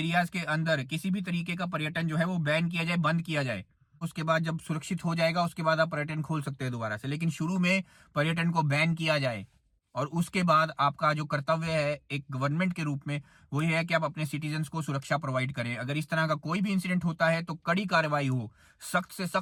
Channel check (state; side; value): identical; both; correlation 1.00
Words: के अंदर किसी भी तरीके का पर्यटन जो है वो बैन किया जाए, बंद किया जाए। उसके बाद जब सुरक्षित हो जाएगा, उसके बाद आप पर्यटन खोल सकते हैं दोबारा से, लेकिन शुरू में पर्यटन को बैन किया जाए। और उसके बाद आपका जो कर्तव्य है एक गवर्नमेंट के रूप में, वो ये है कि आप अपने सिटीजन्स को सुरक्षा प्रोवाइड करें। अगर इस तरह का कोई भी इंसिडेंट होता है तो कड़ी कार्रवाई हो, सख्त से